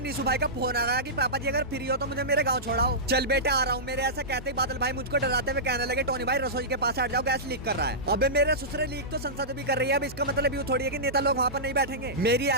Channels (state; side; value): normal; both; correlation -0.16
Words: भाई का फोन आ गया कि पापा जी अगर फ्री हो तो मुझे मेरे गाँव छोड़ाओ। चल बेटे आ रहा हूँ। मेरे ऐसा कहते ही बादल भाई मुझको डराते हुए कहने लगे, टोनी भाई रसोई के पास हट जाओ, गैस लीक कर रहा है। अबे मेरे ससुरे लीक तो संसद भी कर रही है, अब इसका मतलब यूँ थोड़ी है कि नेता लोग वहाँ पर नहीं बैठेंगे। मेरी